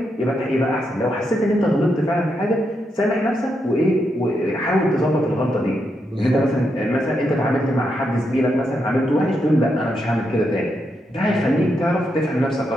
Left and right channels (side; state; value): both; normal; correlation 0.82